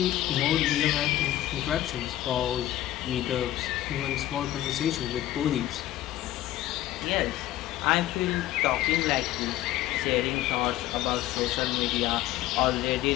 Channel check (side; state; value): right; quieter; 14.3 dB